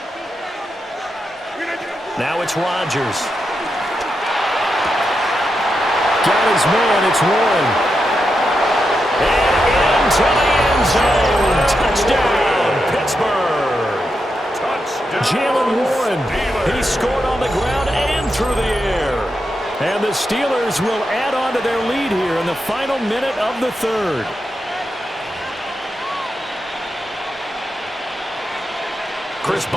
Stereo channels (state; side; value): normal; both; correlation 0.86